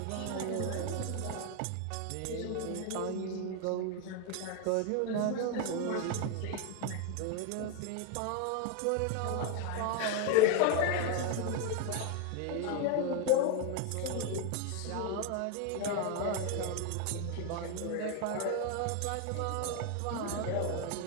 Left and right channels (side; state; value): both; different; correlation 0.01